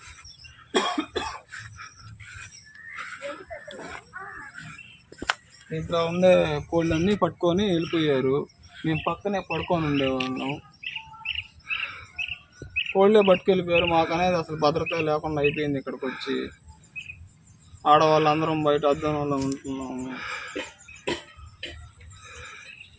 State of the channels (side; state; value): both; identical; correlation 1.00